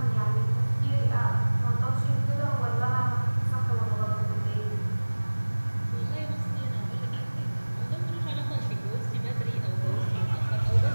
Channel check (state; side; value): inverted; both; correlation -1.00